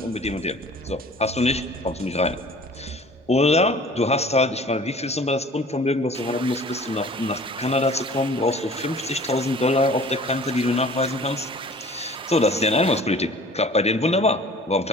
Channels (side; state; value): both; normal; correlation 0.47